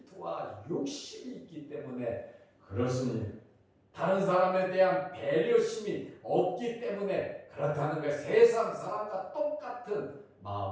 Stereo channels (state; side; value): identical; both; correlation 1.00